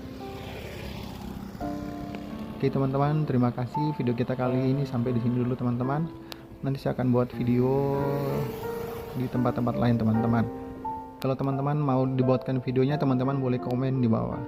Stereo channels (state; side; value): identical; both; correlation 1.00